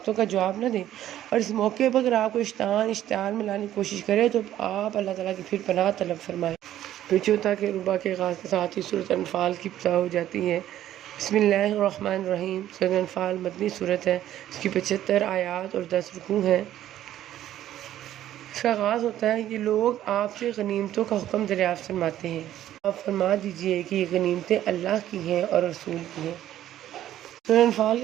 کا جواب نہ دیں۔ اور اس موقع پر اگر آپ کو شیطان اشتعال میں لانے کی کوشش کرے تو آپ اللہ تعالیٰ کی پھر پناہ طلب فرمائیں۔ پھر چوتھا کہ ربا کے آغاز کے ساتھ ہی سورۃ انفال کی ابتدا ہو جاتی ہے۔ بسم اللہ الرحمن الرحیم۔ سورۃ انفال مدنی سورت ہے، اس کی 75 آیات اور 10 رکوع ہیں۔ اس کا آغاز ہوتا ہے کہ لوگ آپ سے غنیمتوں کا حکم دریافت فرماتے ہیں، آپ فرما دیجئے کہ یہ غنیمتیں اللہ کی ہیں اور رسول کی ہیں۔ سورۃ انفال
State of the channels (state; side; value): quieter; left; 12.4 dB